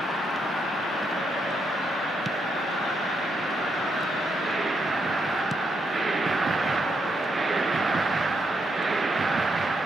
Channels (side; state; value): both; normal; correlation 0.79